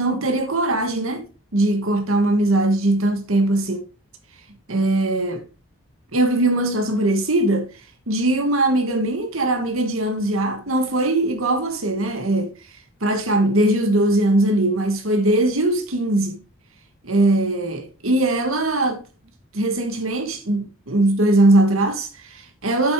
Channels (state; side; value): normal; both; correlation 0.39